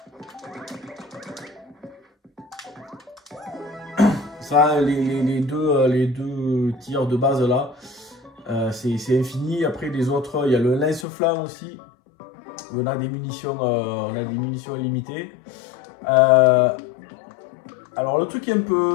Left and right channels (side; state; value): right; drops out; at 11.1 s